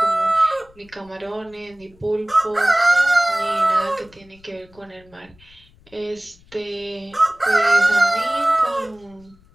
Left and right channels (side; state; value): left; noise; rumble, 28 dB below the sound